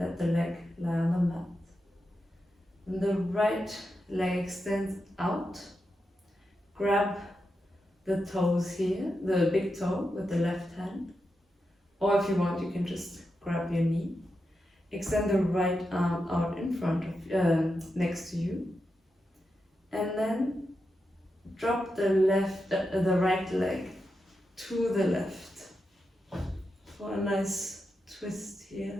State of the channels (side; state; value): both; normal; correlation 0.87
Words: the leg lie on the mat. And the right leg extends out. Grab the toes here, the big toe with the left hand. Or if you want, you can just grab your knee. Extend the right arm out in front of, next to you. And then drop the right leg to the left for a nice twist here.